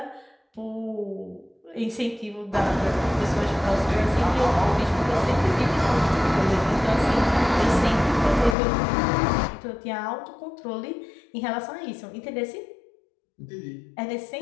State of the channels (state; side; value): drops out; right; at 8.6 s